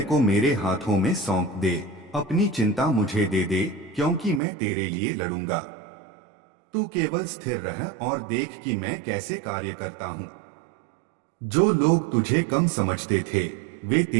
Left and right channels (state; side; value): drops out; left; at 4.4 s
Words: को मेरे हाथों में सौंप दे, अपनी चिंता मुझे दे दे, क्योंकि मैं तेरे लिए लड़ूंगा। तू केवल स्थिर रह और देख कि मैं कैसे कार्य करता हूं। जो लोग तुझे कम समझते थे, वे